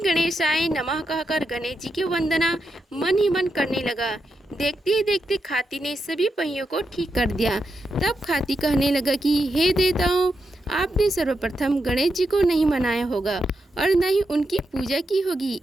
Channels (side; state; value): both; normal; correlation 0.85